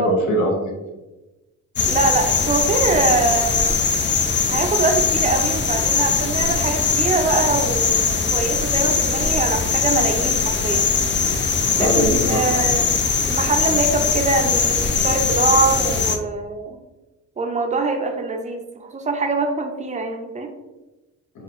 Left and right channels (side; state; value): both; normal; correlation 0.02